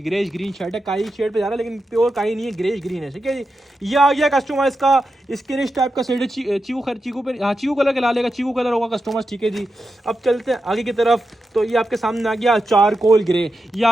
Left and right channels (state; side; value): normal; both; correlation 0.89